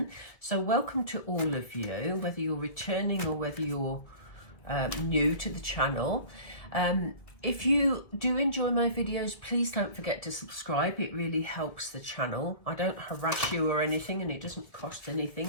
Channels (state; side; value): late; right; 1.9 ms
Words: So welcome to all of you, whether you're returning or whether you're new to the channel. If you do enjoy my videos, please don't forget to subscribe. It really helps the channel. I don't harass you or anything, and it doesn't cost